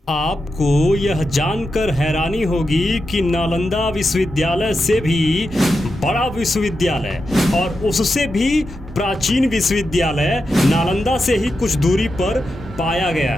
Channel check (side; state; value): both; normal; correlation 0.88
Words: आपको यह जानकर हैरानी होगी कि नालंदा विश्वविद्यालय से भी बड़ा विश्वविद्यालय और उससे भी प्राचीन विश्वविद्यालय नालंदा से ही कुछ दूरी पर पाया गया